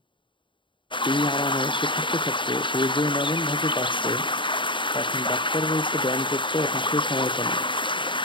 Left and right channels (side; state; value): right; late; 0.24 ms